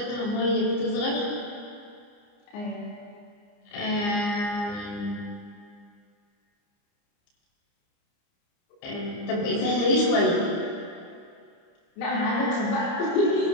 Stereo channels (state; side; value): late; right; 29 ms